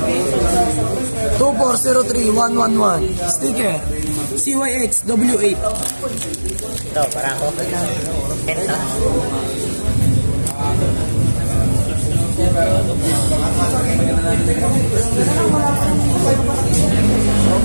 2403111 sticker, CYX W8. Ito, para ako. Ito.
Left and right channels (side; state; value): both; inverted; correlation -1.00